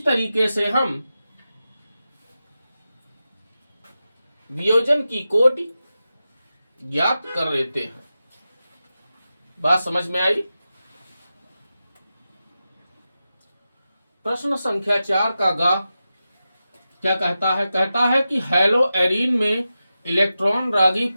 तरीके से हम वियोजन की कोटि ज्ञात कर लेते हैं। बात समझ में आई? प्रश्न संख्या 4 का गा क्या कहता है? कहता है कि हेलो एरीन में इलेक्ट्रॉन रागी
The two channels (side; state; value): both; inverted; correlation -0.92